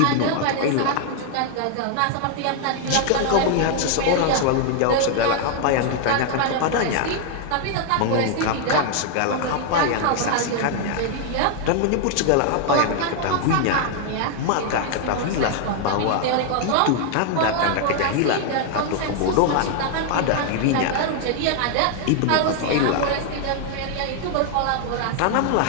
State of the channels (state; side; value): different; both; correlation 0.00